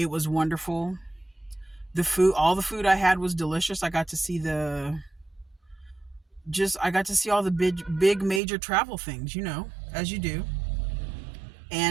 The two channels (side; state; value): left; drops out; at 8.4 s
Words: was wonderful. All the food I had was delicious. I got to see all the big major travel things, as you do.